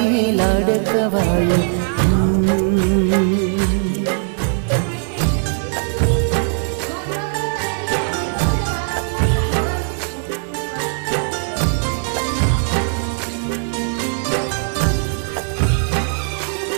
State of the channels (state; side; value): silent; left; 58 dB below the other